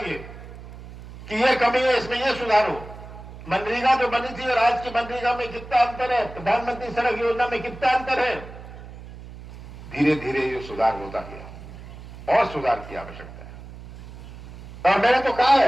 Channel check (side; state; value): right; noise; hum, 15 dB below the sound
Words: कि ये कमी है, इसमें ये सुधारो। मनरेगा जो बनी थी और आज की मनरेगा में कितना अंतर है, प्रधानमंत्री सड़क योजना में कितना अंतर है। धीरे धीरे ये सुधार होता गया और सुधार की आवश्यकता है। और मैंने तो कहा